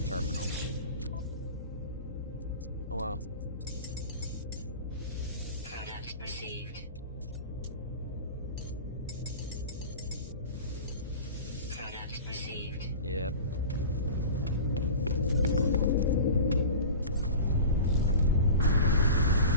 terminal? Oh well. Product received. Product received. Yep.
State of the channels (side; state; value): both; inverted; correlation -0.34